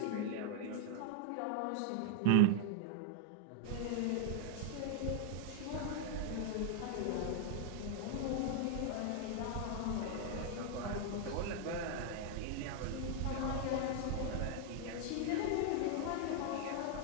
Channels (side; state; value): both; different; correlation 0.00